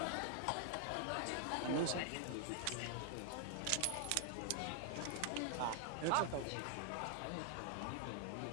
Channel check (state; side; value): different; both; correlation 0.00